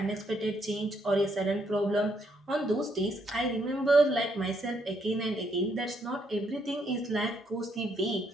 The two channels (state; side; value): normal; both; correlation 0.74